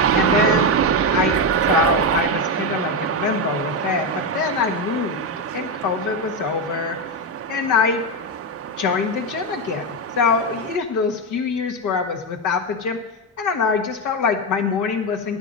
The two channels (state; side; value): normal; both; correlation 0.10